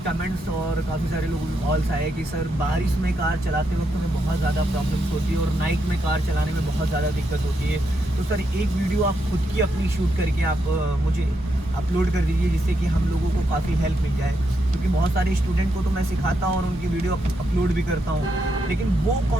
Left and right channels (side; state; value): both; normal; correlation 0.81